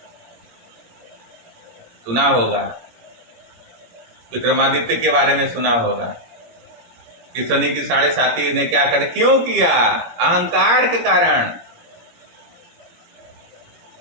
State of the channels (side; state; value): left; late; 17 ms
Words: सुना होगा, विक्रमादित्य के बारे में सुना होगा कि शनि की 7.5 ने क्या कर, क्यों किया? अहंकार के कारण।